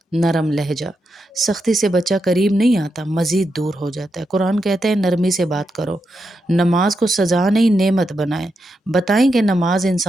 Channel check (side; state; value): both; normal; correlation 0.85